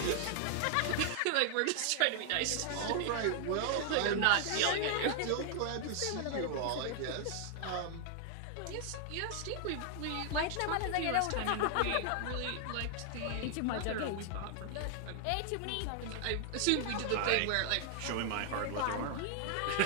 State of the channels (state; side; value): different; both; correlation 0.00